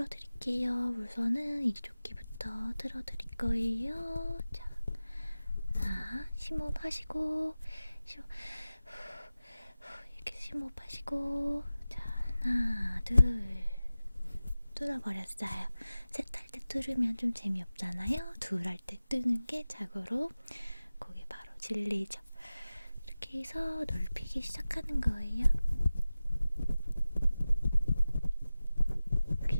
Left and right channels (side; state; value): both; inverted; correlation -0.96